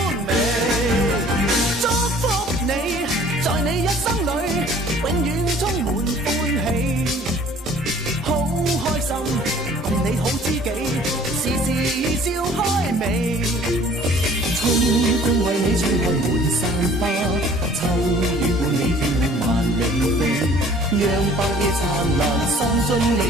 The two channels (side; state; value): both; normal; correlation 0.52